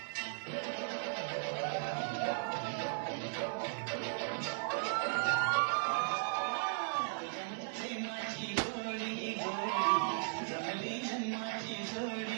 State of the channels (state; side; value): silent; left; 53 dB below the other